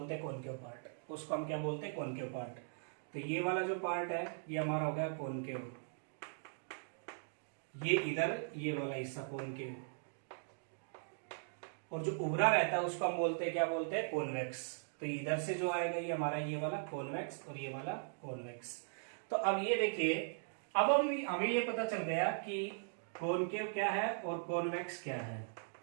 हैं कॉनकेव पार्ट, उसको हम क्या बोलते हैं, कॉनकेव पार्ट। तो ये वाला जो पार्ट है ये हमारा हो गया कॉनकेव, ये इधर ये वाला हिस्सा कॉनकेव, और जो उभरा रहता है उसको हम बोलते हैं, क्या बोलते हैं, कॉन्वेक्स। तो इधर से जो आएगा ये हमारा ये वाला कॉन्वेक्स और ये वाला कॉन्वेक्स। तो अब ये देखिए, अब हमें ये पता चल गया कि कॉनकेव क्या है और कॉन्वेक्स क्या है।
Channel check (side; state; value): left; silent; digital silence